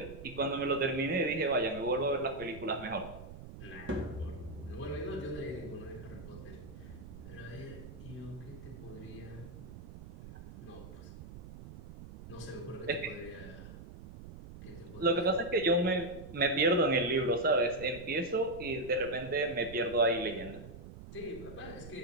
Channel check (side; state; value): right; noise; rumble, 14 dB below the sound